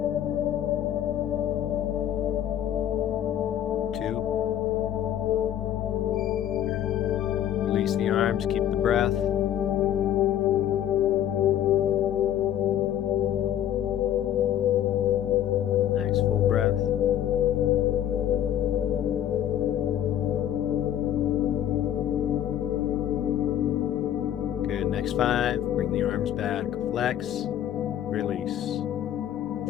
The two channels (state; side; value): quieter; right; 10.9 dB